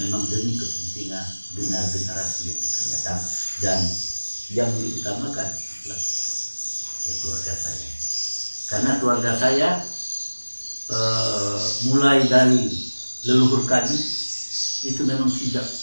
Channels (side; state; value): both; inverted; correlation -1.00